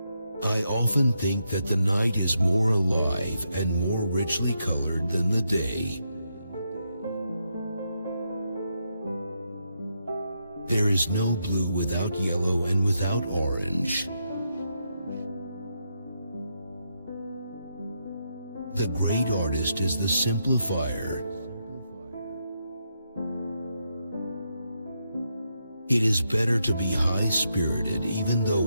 I often think that the night is more alive and more richly colored than the day. There is no blue without yellow and without orange. The great artist is the simplifier. It is better to be high-spirited even though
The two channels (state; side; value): inverted; both; correlation -0.81